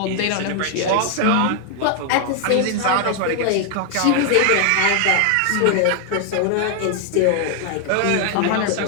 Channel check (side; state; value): both; different; correlation 0.00